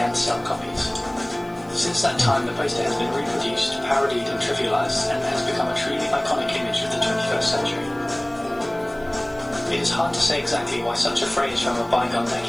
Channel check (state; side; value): noise; right; hiss, 29 dB below the sound